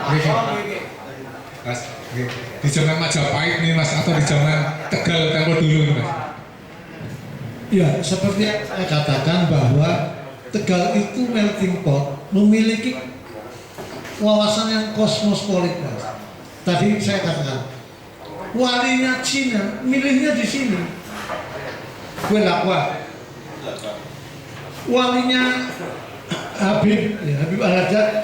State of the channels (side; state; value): both; identical; correlation 1.00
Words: Mas, di zaman Majapahit nih Mas, atau di zaman Tegal tempo dulu nih Mas? Ya, seperti yang saya katakan bahwa Tegal itu melting pot, memiliki wawasan yang kosmopolit. Tadi saya katakan, walinya Cina, milihnya di sini. Gue lakwa. Walinya Habib Al-Haddad